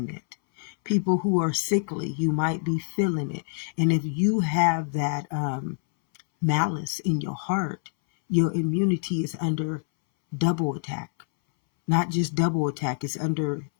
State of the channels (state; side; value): silent; right; 61 dB below the other